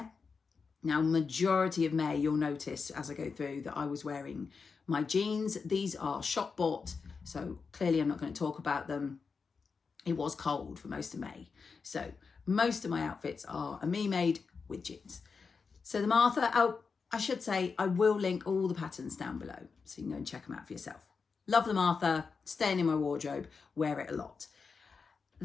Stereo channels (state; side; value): quieter; right; 5.1 dB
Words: Now, majority of May, you'll notice as I go through that I was wearing my jeans. These are shop bought, so clearly I'm not going to talk about them. It was cold for most of May. So most of my outfits are a Me Made with jeans. So the Martha, oh, I should say, I will link all the patterns down below so you can go and check them out for yourself. Love the Martha, staying in my wardrobe, wear it a lot.